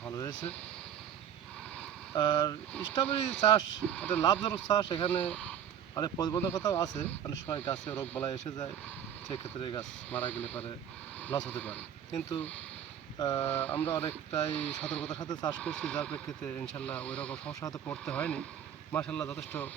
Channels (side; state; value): left; quieter; 9.4 dB